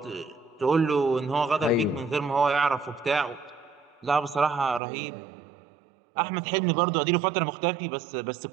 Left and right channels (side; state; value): left; drops out; at 4.8 s